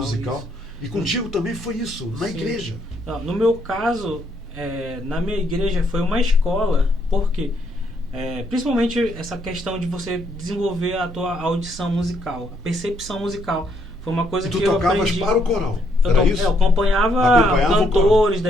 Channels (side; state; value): both; normal; correlation 0.72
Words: E contigo também foi isso, na Sim. igreja. Não, no meu caso, na minha igreja foi uma escola, porque principalmente essa questão de você desenvolver a tua audição musical, a percepção musical. Foi uma coisa e tu que eu tocavas aprendi. para o coral, era isso? Eu acompanhava cantores